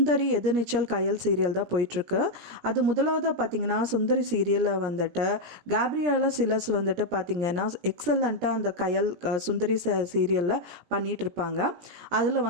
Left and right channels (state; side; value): late; left; 17 ms